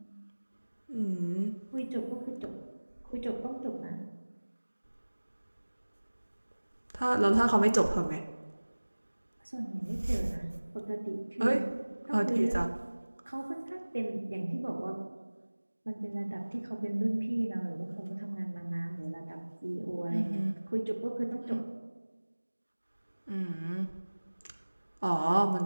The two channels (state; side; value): inverted; both; correlation -1.00